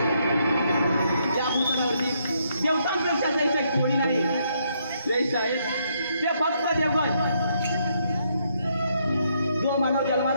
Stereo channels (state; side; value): inverted; both; correlation -0.74